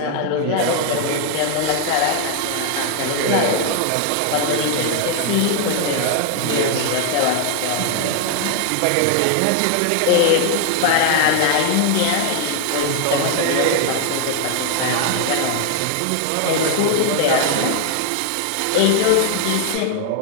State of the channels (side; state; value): both; different; correlation 0.00